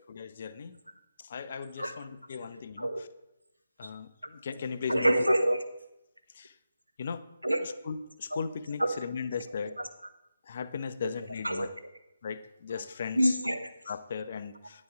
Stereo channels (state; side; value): inverted; both; correlation -0.91